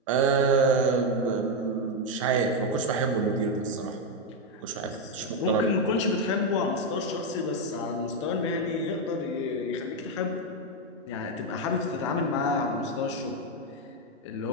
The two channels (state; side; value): normal; both; correlation 0.05